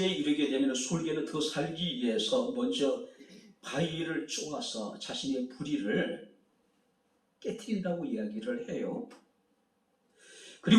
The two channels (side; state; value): both; identical; correlation 1.00